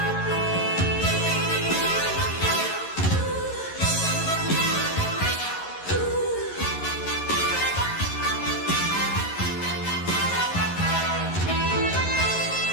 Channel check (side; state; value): right; late; 11 ms